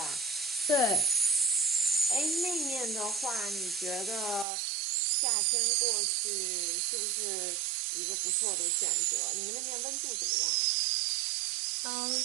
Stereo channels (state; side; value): drops out; left; at 4.5 s